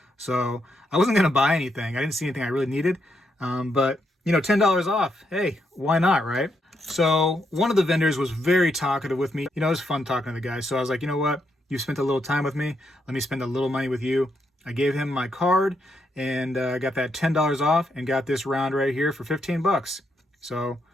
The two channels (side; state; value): both; normal; correlation 0.79